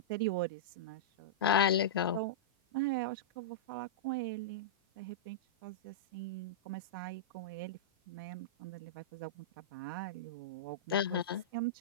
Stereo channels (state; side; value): normal; both; correlation -0.12